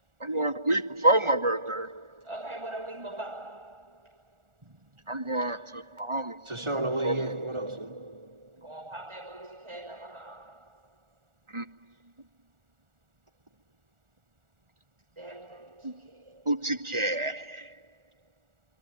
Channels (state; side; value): late; left; 1.4 ms